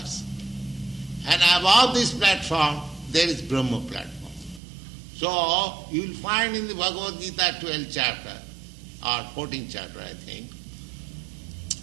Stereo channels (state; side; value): drops out; left; at 4.6 s